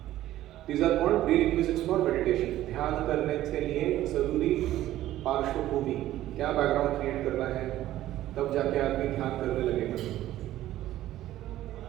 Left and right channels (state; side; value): quieter; left; 14.0 dB